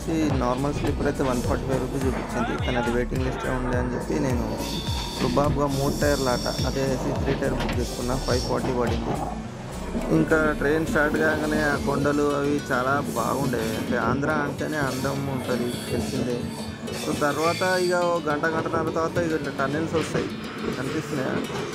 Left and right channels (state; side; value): identical; both; correlation 1.00